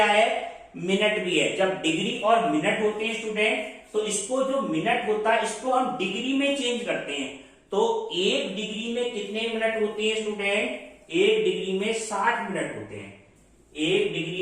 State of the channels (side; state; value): both; identical; correlation 1.00